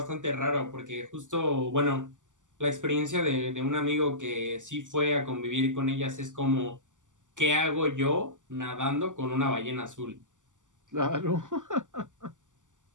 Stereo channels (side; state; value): left; late; 0.87 ms